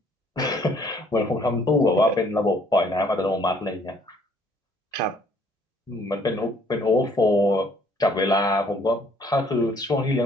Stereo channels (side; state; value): both; normal; correlation 0.62